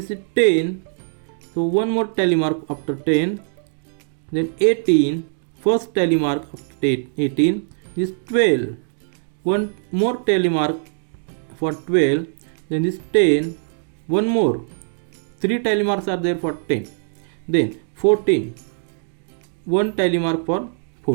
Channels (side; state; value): left; silent; 64 dB below the other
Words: is 10, so one more tally mark after 10, then 18, first tally mark after 18 is 12, one more tally mark for 12, then this 10, one more, 3 tally marks are there for 10, then 14, one tally mark for